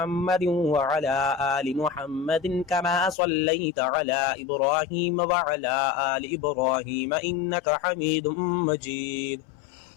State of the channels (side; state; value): right; drops out; at 3.2 s